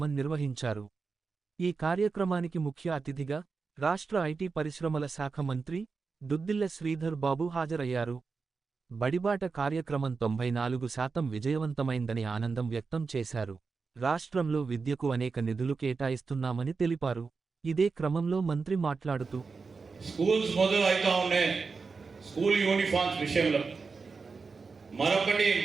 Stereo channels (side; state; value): left; quieter; 4.7 dB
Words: నిర్వహించారు. ఈ కార్యక్రమానికి ముఖ్య అతిథిగా రాష్ట్ర ఐటీ పరిశ్రమల శాఖ మంత్రి దుద్దిళ్ల శ్రీధర్ బాబు హాజరయ్యారు. బడిబాట కార్యక్రమం 94% విజయవంతమైందని ఆనందం వ్యక్తం చేశారు. రాష్ట్రంలో విద్యకు అనేక నిధులు కేటాయిస్తున్నామని తెలిపారు. ఇదే క్రమంలో మంత్రి మాట్లాడుతూ స్కూల్స్ మొదలు అవుతా ఉన్నాయి. స్కూల్ యూనిఫామ్స్ విషయంలో మరొకటి